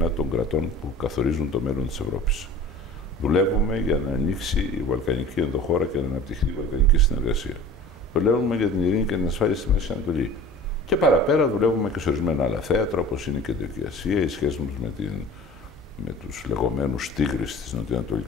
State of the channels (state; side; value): normal; both; correlation 0.42